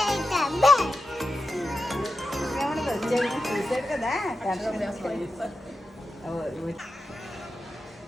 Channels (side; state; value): both; normal; correlation 0.91